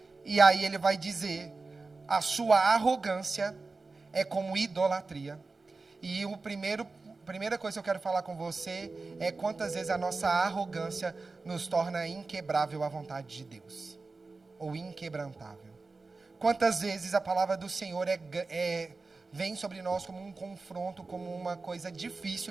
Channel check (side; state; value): left; quieter; 3.8 dB